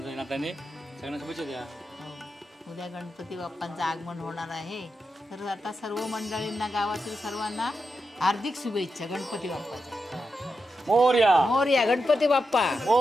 नात्याने सगळ्यांना शुभेच्छा द्या. उद्या गणपती बाप्पांचं आगमन होणार आहे, तर आता सर्व मंडळींना गावातील सर्वांना हार्दिक शुभेच्छा गणपती बाप्पाच्या. मोरया मोरया गणपती बाप्पा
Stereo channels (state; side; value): normal; both; correlation 0.87